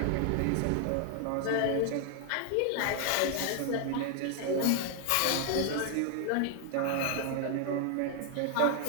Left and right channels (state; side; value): different; both; correlation 0.00